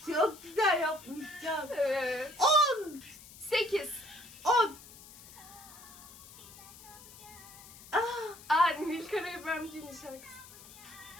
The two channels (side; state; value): left; noise; hiss, 18 dB below the sound